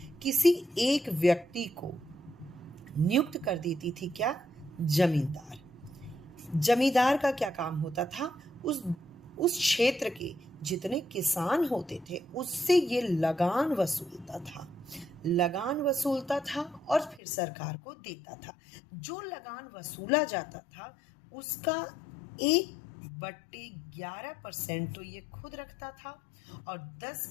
किसी एक व्यक्ति को नियुक्त कर देती थी। क्या? जमींदार। जमींदार का क्या काम होता था? उस क्षेत्र के जितने किसान होते थे उससे ये लगान वसूलता था और फिर सरकार को देता था। जो लगान वसूला जाता था उसका 1/11% तो ये खुद रखता था और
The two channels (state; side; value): drops out; right; at 17.2 s